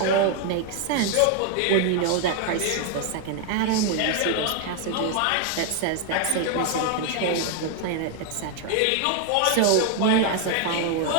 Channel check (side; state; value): both; different; correlation 0.00